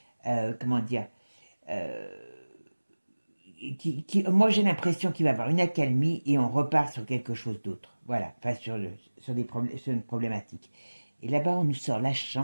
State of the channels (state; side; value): inverted; both; correlation -1.00